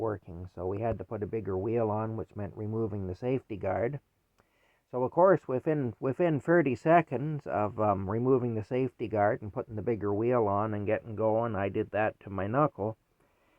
So we had to put a bigger wheel on, which meant removing the safety guard. So of course, within 30 seconds of removing the safety guard and putting the bigger wheel on and getting going, I did that to my knuckle.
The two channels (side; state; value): both; identical; correlation 1.00